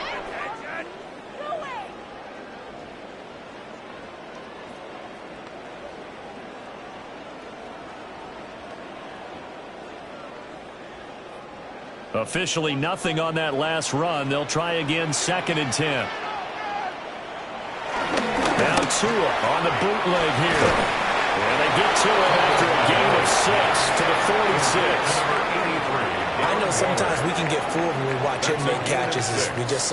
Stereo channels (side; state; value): both; identical; correlation 1.00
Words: Officially nothing on that last run. They'll try again, 2nd and 10. Now Tua on the bootleg here. And they get to it after a gain of 6 to the 46. I know sometimes we can get fooled when we watch him make catches, as we just